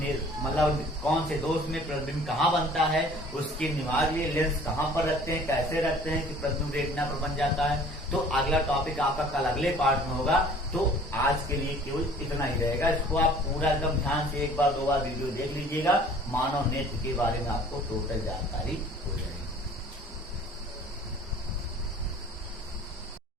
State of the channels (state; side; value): normal; both; correlation 0.50